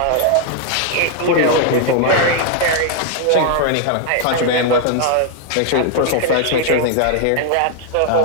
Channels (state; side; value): different; both; correlation 0.00